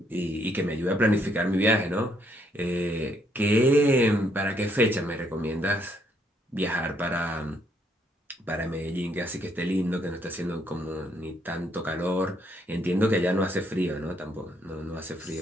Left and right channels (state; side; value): normal; both; correlation 0.71